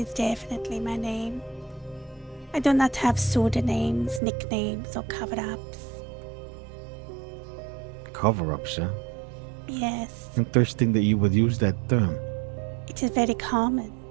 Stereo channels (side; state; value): left; drops out; at 4.2 s